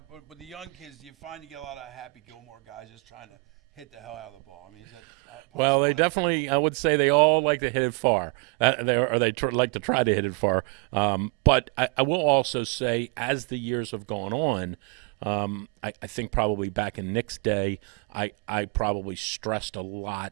with the young kids, do you find you get a lot of Happy Gilmore guys just trying to hit the hell out of the ball? I mean, is that possible? Well, they definitely, I would say they all like to hit it far. Like to try to hit it far. But I will also say, as the years have gone on, I think probably back in Nick's day, I probably stressed a lot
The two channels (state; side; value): quieter; left; 31.0 dB